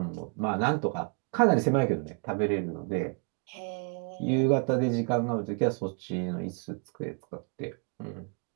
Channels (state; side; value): quieter; left; 36.6 dB